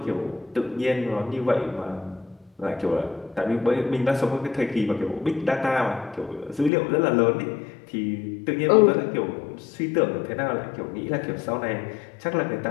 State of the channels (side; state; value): right; drops out; at 6.7 s